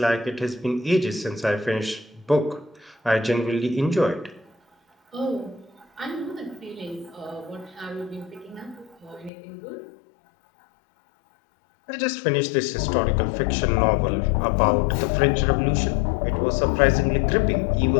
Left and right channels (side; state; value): right; drops out; at 9.3 s